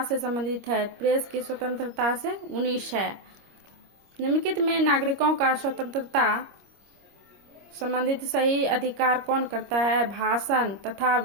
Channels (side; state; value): left; late; 25 ms